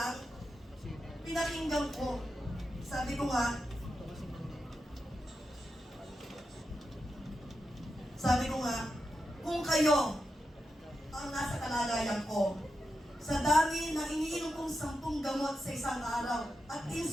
pinakinggan ko. Sabi ko nga, kung kayo ang nasa kalagayan ko, sa dami ng iniinom kong 10 gamot sa isang araw at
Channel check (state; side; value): normal; both; correlation 0.88